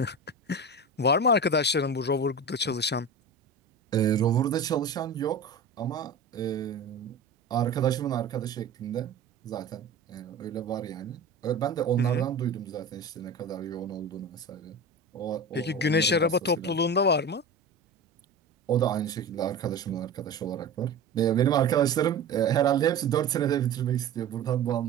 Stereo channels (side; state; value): left; quieter; 3.4 dB